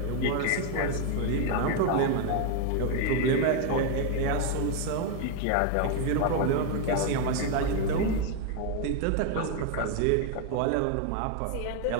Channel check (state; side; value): different; both; correlation 0.00